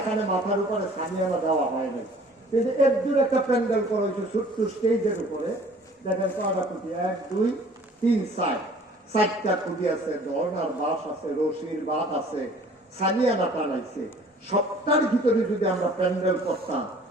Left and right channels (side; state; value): both; normal; correlation 0.52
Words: মাথার উপরে সামিয়ানা দেওয়া হয় নাই, কিন্তু এর দূর একটা প্যান্ডেল করা হয়েছে ছোট্ট স্টেজের উপরে। দেখেন কয়টা খুঁটি, 1 2 3 4টা খুঁটি আছে, ধর্নার বাঁশ আছে, রশির বাঁধ আছে, সামিয়ানা টানাইছে। সবটার ভিতরে যদি আমরা প্যান্ডেল করতাম,